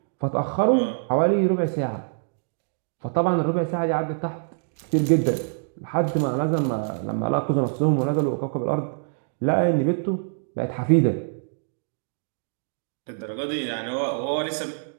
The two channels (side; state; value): left; silent; digital silence